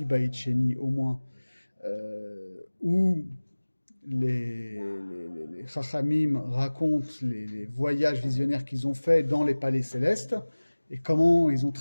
Beit Sheni au moins, où les Chachamim racontent les voyages visionnaires qu'ils ont faits dans les palais célestes et comment ils ont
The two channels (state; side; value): inverted; both; correlation -1.00